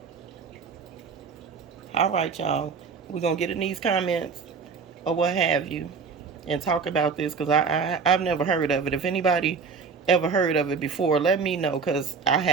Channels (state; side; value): quieter; left; 5.3 dB